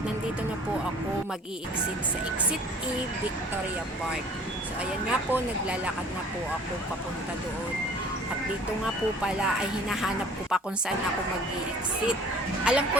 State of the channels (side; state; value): both; normal; correlation 0.50